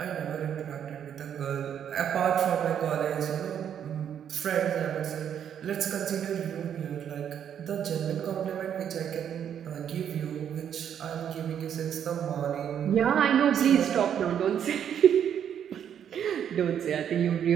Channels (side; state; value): left; quieter; 9.0 dB